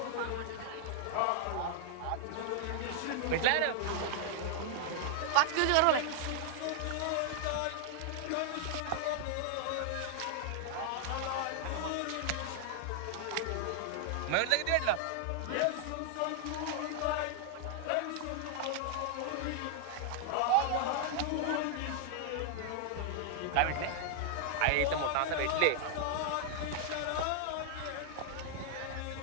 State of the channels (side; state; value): both; different; correlation 0.00